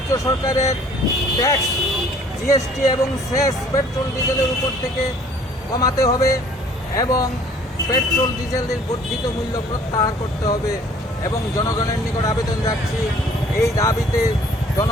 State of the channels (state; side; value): normal; both; correlation 0.55